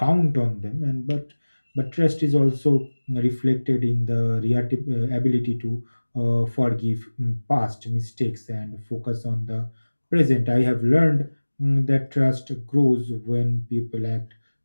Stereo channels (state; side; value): inverted; both; correlation -1.00